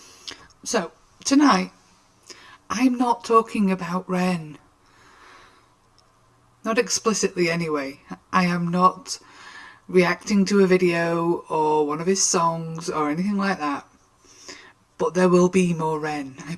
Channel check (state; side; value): identical; both; correlation 1.00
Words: So, tonight, I'm not talking about Ren. Not explicitly, anyway. I am not reacting to a video or one of his songs or anything like that. But there will be more Ren, I